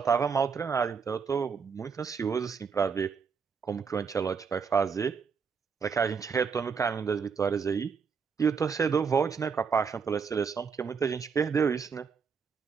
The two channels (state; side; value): quieter; left; 5.9 dB